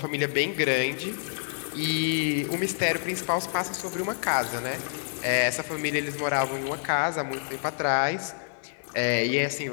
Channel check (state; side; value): silent; right; digital silence